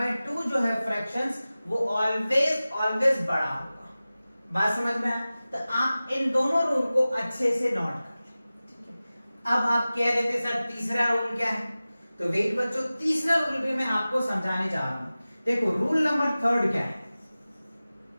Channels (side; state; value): both; inverted; correlation -0.97